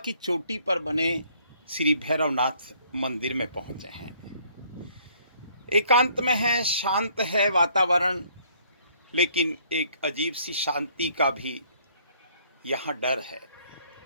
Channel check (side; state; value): both; inverted; correlation -0.62